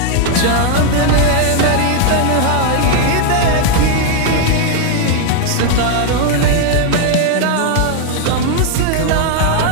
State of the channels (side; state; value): both; different; correlation 0.00